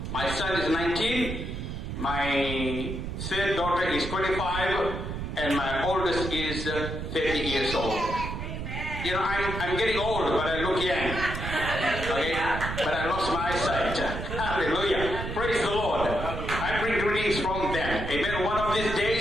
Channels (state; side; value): noise; right; rumble, 5 dB below the sound